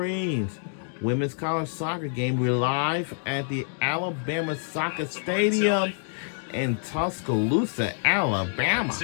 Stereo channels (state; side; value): silent; right; digital silence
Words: Women's college soccer game. We're live at the Alabama Soccer Stadium in Tuscaloosa, Alabama.